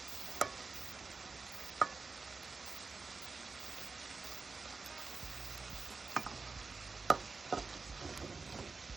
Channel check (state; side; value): quieter; left; 4.3 dB